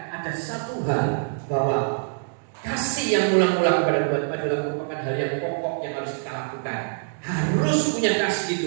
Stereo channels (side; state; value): left; silent; digital silence